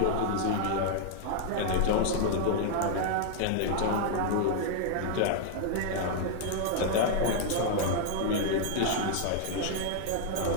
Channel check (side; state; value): both; different; correlation 0.00